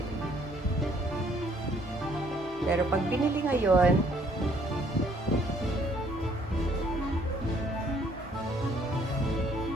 Pero pag binili ngayon,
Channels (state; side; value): normal; both; correlation 0.63